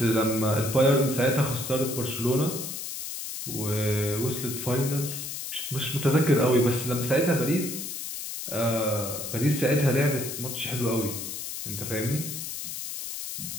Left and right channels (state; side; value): noise; left; hiss, 6 dB below the sound